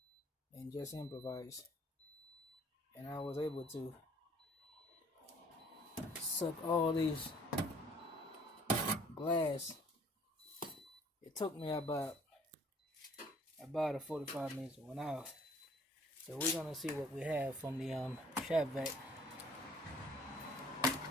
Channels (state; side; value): normal; both; correlation 0.57